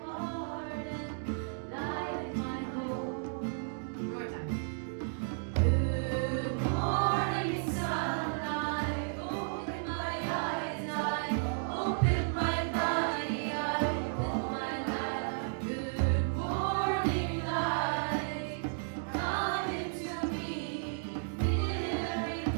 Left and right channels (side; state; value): left; silent; digital silence